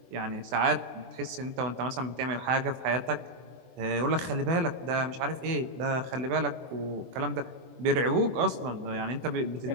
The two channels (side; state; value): left; late; 24 ms